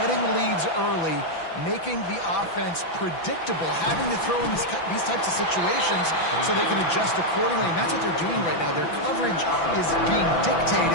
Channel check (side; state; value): right; late; 6.0 ms